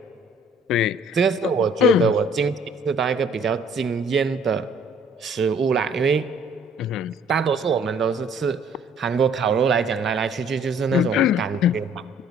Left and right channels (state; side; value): normal; both; correlation 0.58